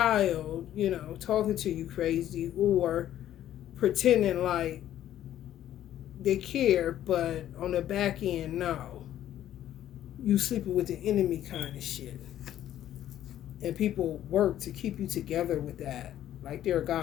talking to you crazy or pretending like they care, but on the back end, no. You sleeping with the enemy kind of shit. And people work to keep you together with that. Like they're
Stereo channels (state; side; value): quieter; right; 11.9 dB